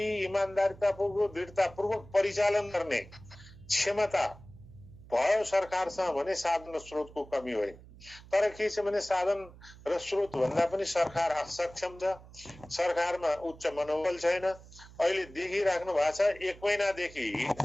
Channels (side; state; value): right; noise; hum, 20 dB below the sound